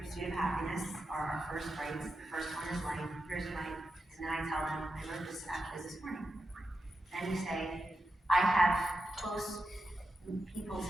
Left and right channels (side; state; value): both; normal; correlation 0.89